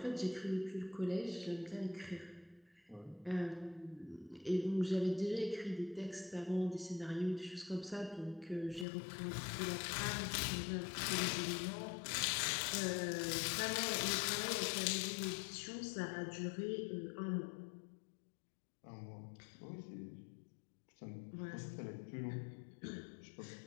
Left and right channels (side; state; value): right; drops out; at 8.8 s